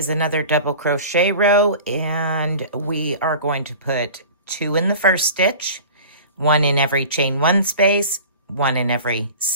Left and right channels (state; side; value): inverted; both; correlation -0.40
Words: another double crochet row, and we are going to put 2 in the first stitch, 1 in every chain 1 space, 1 in every